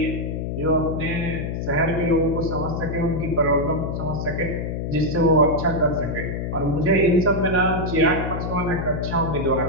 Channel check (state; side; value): noise; left; hum, 3 dB below the sound